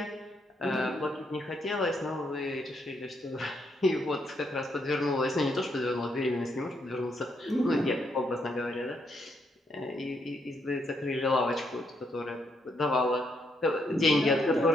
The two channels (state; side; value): normal; both; correlation 0.76